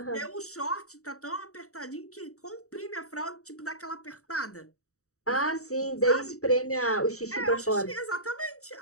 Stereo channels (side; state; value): right; late; 0.65 ms